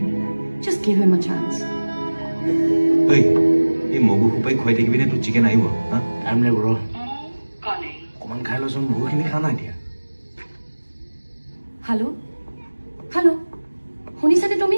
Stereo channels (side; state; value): both; inverted; correlation -1.00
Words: just give him a chance এই মগু সোপাই খুৱাই থাকিবি নে তোৰ চিকেন আহিব টাইম লাগিব ৰ অকণমান খাই লৈচোন বহুখিনি খা নাই এতিয়া হেল্ল' শুনিছানে তুমি